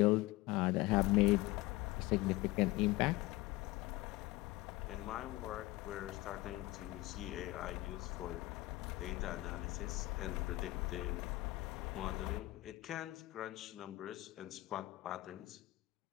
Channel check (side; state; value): right; quieter; 19.3 dB